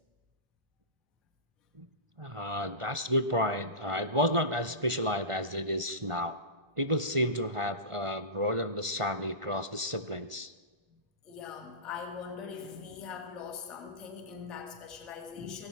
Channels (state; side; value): late; left; 1.5 ms